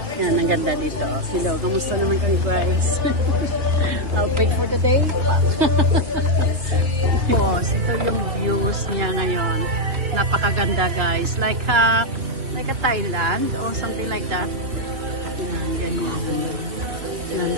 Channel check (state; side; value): late; left; 2.9 ms